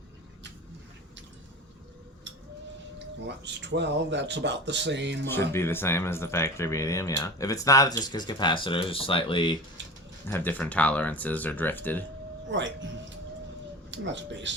Well, that's 12. That's about the same. Should be the same as the factory medium, yeah. If it's not, it's just because capacitors slightly have different tolerances or drifted. Right. And that's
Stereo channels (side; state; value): both; normal; correlation 0.33